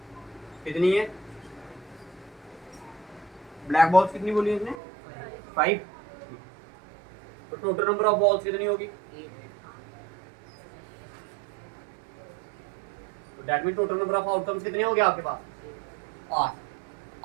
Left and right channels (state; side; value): drops out; left; at 4.8 s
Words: कितनी है? ब्लैक बॉल्स कितनी बोली उसने? 5। तो टोटल नंबर ऑफ बॉल्स कितनी होगी? तो that mean total number of outcomes कितने हो गए आपके पास?